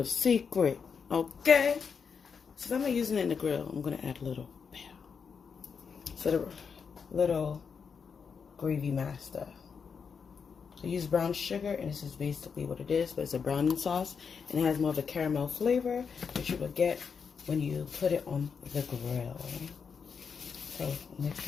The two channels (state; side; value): quieter; right; 6.1 dB